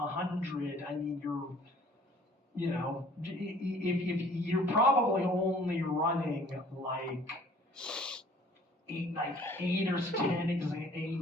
I mean, if you're probably only running like eight or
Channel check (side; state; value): both; normal; correlation 0.53